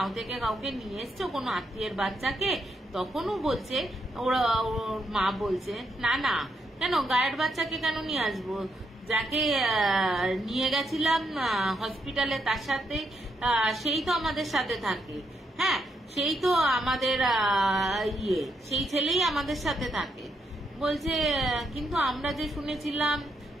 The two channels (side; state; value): both; normal; correlation 0.79